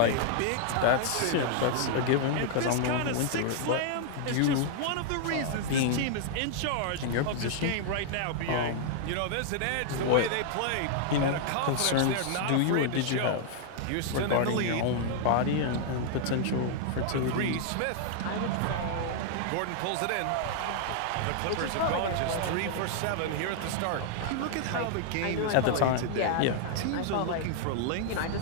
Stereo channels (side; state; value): both; different; correlation -0.01